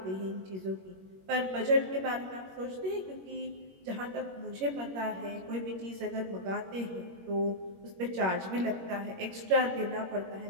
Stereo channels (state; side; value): late; left; 21 ms